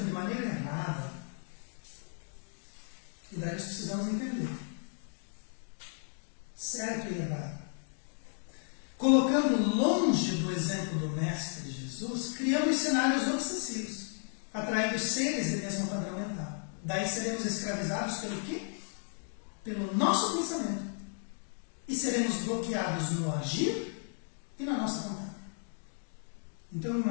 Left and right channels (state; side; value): silent; right; 55 dB below the other